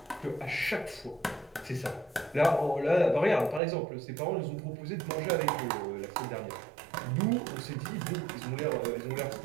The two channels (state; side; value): drops out; left; at 3.6 s